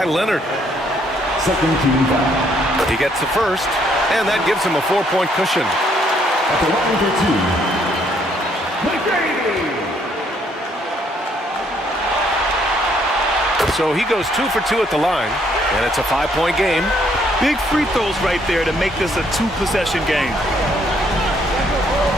Leonard. Second team foul. He gets the first, and that gives him a 4-point cushion. At the line for 2, McGrady. So he goes 2 for 2 at the line, and it's a 5-point game. Big free throws right there to make this a 2-possession game.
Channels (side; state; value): both; normal; correlation 0.68